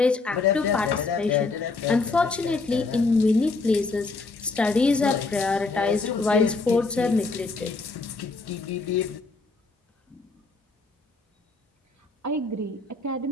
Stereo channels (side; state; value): right; quieter; 3.8 dB